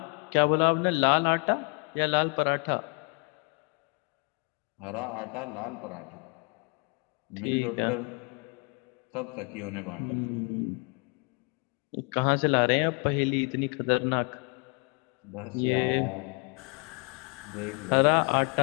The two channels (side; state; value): right; quieter; 35.0 dB